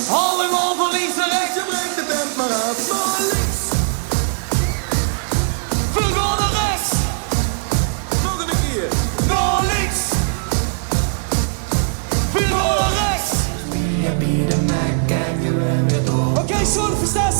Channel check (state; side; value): silent; left; digital silence